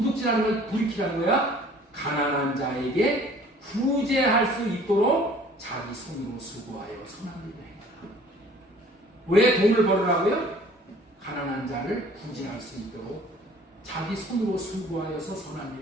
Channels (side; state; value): both; normal; correlation 0.52